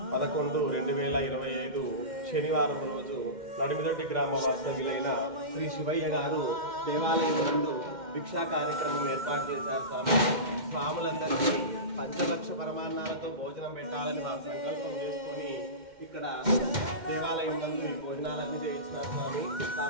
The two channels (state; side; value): late; left; 2.1 ms